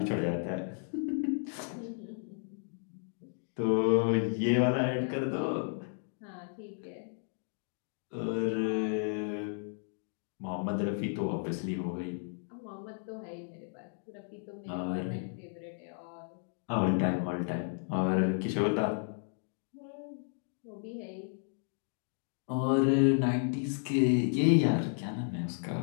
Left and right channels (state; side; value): silent; right; 56 dB below the other